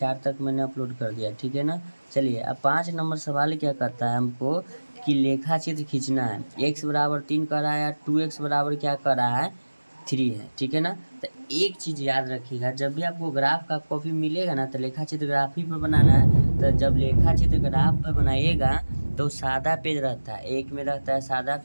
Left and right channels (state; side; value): inverted; both; correlation -1.00